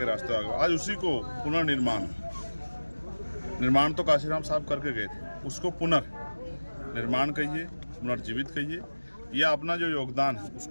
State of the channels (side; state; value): both; inverted; correlation -1.00